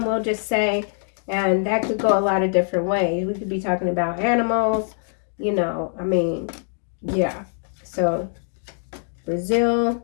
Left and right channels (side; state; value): right; silent; digital silence